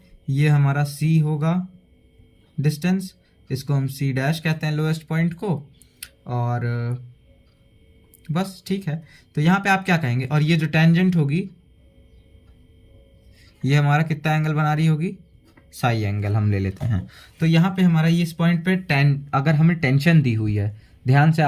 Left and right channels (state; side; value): identical; both; correlation 1.00